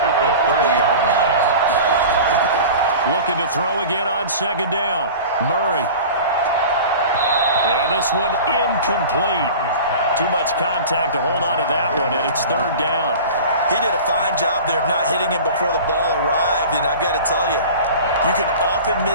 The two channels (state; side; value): inverted; both; correlation -0.37